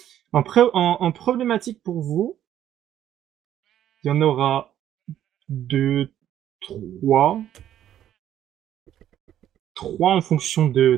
En problématique pour vous, il y en aura 2, 3. 3 en fonction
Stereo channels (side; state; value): left; quieter; 11.3 dB